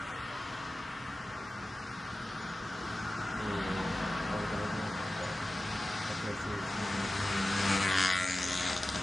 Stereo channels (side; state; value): both; normal; correlation 0.96